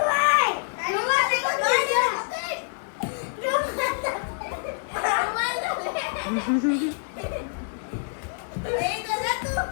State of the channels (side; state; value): right; silent; 60 dB below the other